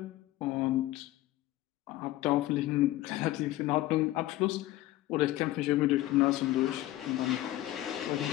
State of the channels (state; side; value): quieter; right; 16.1 dB